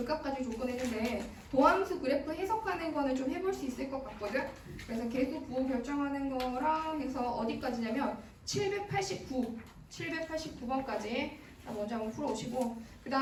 가지고 조건했는데 도함수 그래프 해석하는 거는 좀 해볼 수 있을 것 같거든. 그래서 계수 부호 결정하는 거랑 해서 어디까지냐면 789번까지 먼저 한번 풀어오시고 그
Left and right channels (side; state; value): both; identical; correlation 1.00